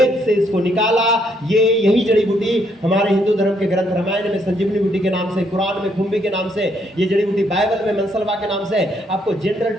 से इसको निकाला। ये यही जड़ी बूटी हमारे हिंदू धर्म के ग्रंथ रामायण में संजीवनी बूटी के नाम से, कुरान में खुम्बी के नाम से, ये जड़ी बूटी बाइबल में मनसलवा के नाम से आपको जनरल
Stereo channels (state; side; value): normal; both; correlation 0.72